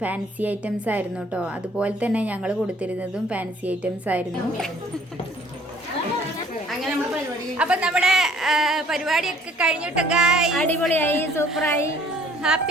ഫാൻസി ഐറ്റംസ് ആയിരുന്നു കേട്ടോ. അതുപോലെ തന്നെ ഞങ്ങൾ കൊടുത്തിരുന്നതും ഫാൻസി ഐറ്റംസ് ആയിരുന്നു. അപ്പൊ നമ്മുടെ പരിപാടിയൊക്കെ കഴിഞ്ഞിട്ട് അടിപൊളിയായി, സൂപ്പറായി.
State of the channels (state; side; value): normal; both; correlation 0.57